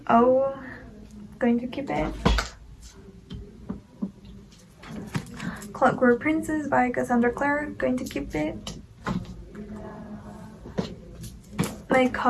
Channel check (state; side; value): identical; both; correlation 1.00